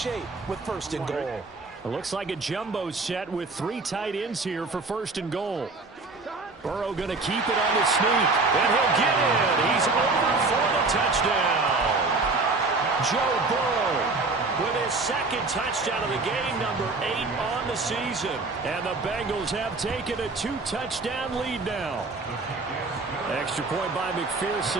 with 1st and goal. It looks like a jumbo set with 3 tight ends here for 1st and goal. Burrow going to keep it on the sneak, and he'll get in. He's over for the touchdown. Joe Burrow with his 2nd touchdown of the game, number 8 on the season. And the Bengals have taken a 2-touchdown lead now. Extra point by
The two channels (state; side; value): quieter; left; 3.6 dB